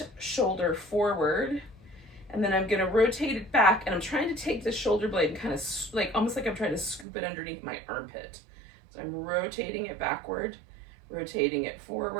shoulder forward, and then I'm gonna rotate it back, and I'm trying to take the shoulder blade and kind of almost like I'm trying to scoop it underneath my armpit. So I'm rotating it backward, rotating it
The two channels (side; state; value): left; drops out; at 7.1 s